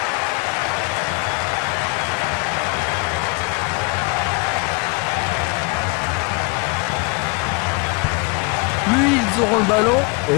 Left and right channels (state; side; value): quieter; right; 29.5 dB